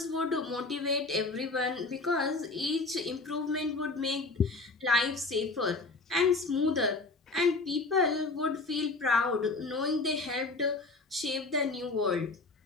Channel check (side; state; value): right; quieter; 3.5 dB